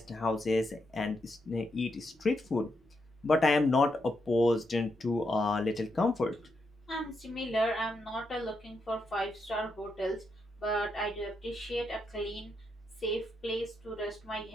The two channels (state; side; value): normal; both; correlation 0.82